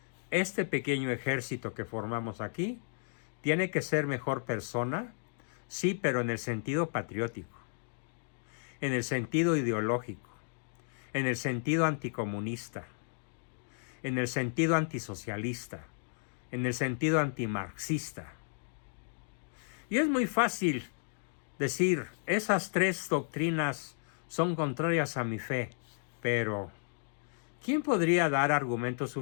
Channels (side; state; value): right; silent; digital silence